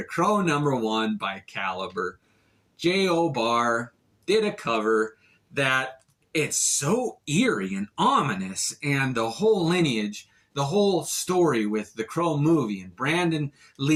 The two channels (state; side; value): identical; both; correlation 1.00